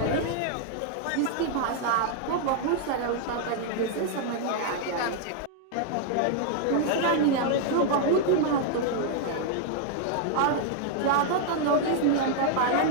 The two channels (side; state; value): both; different; correlation 0.00